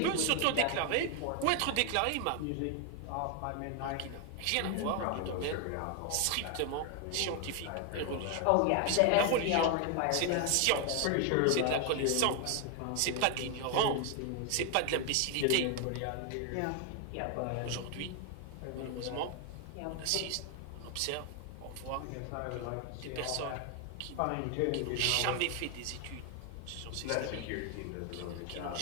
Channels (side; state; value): both; different; correlation 0.00